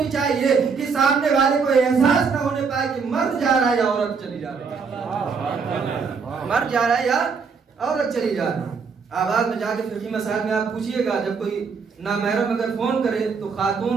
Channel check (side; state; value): left; quieter; 5.4 dB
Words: چاہیے کہ سامنے والے کو احساس نہ ہونے پائے کہ مرد جا رہا ہے یا عورت چلی جا رہی ہے، مرد جا رہا ہے یا عورت چلی جا رہی ہے۔ آواز میں جا کے فقہی مسائل میں آپ پوچھئے گا، جب کوئی نامحرم اگر فون کرے تو